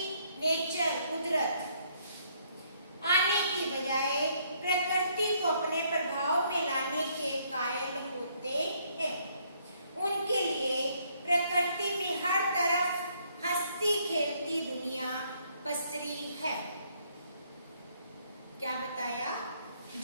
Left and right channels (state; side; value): inverted; both; correlation -0.68